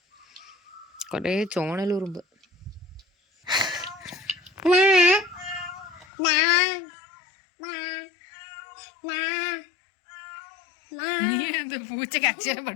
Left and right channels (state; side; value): drops out; right; at 6.1 s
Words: കൊറേ ചോണലുറുമ്പ്. നീ എന്ത് പൂച്ചക്ക് അക്ഷരം